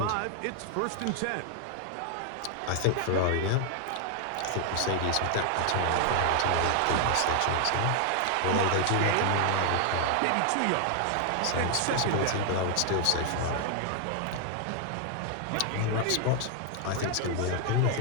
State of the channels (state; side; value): different; both; correlation 0.00